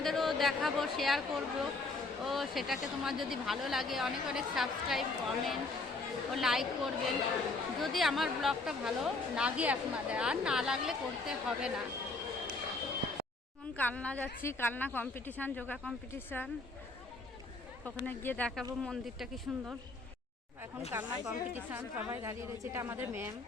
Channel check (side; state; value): right; quieter; 3.4 dB